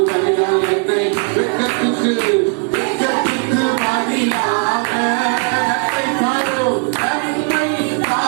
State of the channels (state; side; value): quieter; left; 36.9 dB